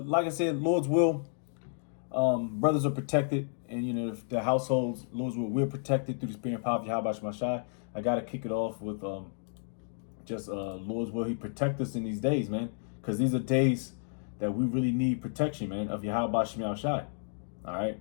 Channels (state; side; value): silent; right; digital silence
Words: like I said, Lord's will, brothers are protected, and you know the households, Lord's will, we're protected through the spirit and power of Yahweh Shemashai. I gotta kick it off with just Lord's will. He protect us in these days, man, because these are days that we really need protection, man, of Yahweh Shemashai. All right,